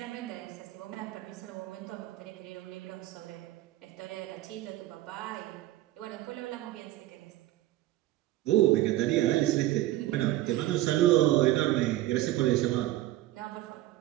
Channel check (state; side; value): quieter; left; 15.5 dB